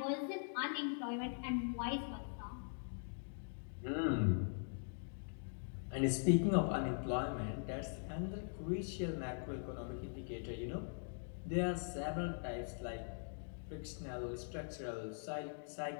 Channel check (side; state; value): right; silent; digital silence